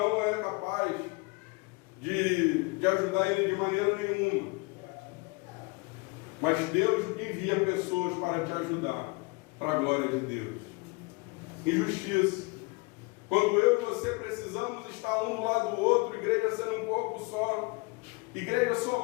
é capaz de ajudar ele de maneira nenhuma. Mas Deus envia pessoas para te ajudar, para a glória de Deus. Injustiça. Quando eu e você precisamos estar um do lado do outro, igreja sendo um corpo só, igreja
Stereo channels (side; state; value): right; quieter; 27.3 dB